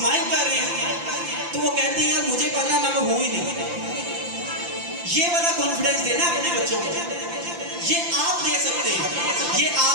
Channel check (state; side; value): late; left; 5.8 ms